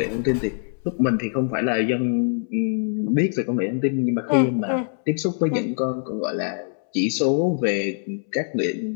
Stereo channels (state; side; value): silent; right; 63 dB below the other